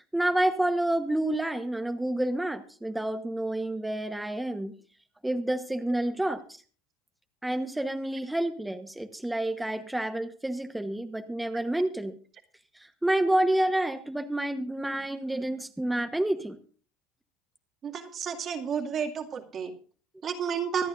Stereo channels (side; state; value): both; normal; correlation 0.94